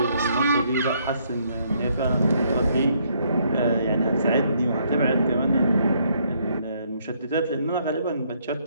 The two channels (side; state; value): both; inverted; correlation -0.70